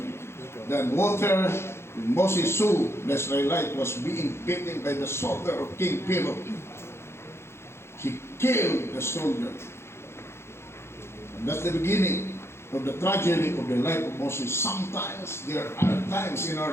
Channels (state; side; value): late; right; 0.12 ms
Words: than water. When Moses saw the Israelite was being beaten by the soldier of King Pharaoh, he killed the soldier. And that's the beginning of the tragedy of the life of Moses. Sometimes there are times in